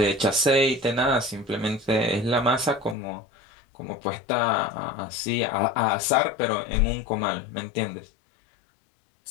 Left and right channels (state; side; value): drops out; right; at 3.0 s